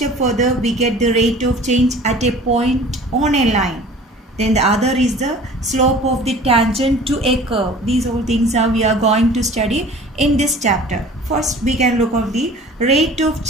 further, we get the rate of change at a point on a line. Then the other is the slope of the tangent to a curve. These all things we are going to study in this chapter. First, we can look at the rate of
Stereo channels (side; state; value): both; normal; correlation 0.45